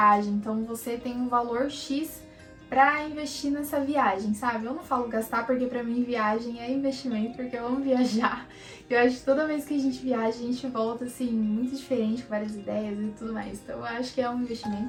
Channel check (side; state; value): both; identical; correlation 1.00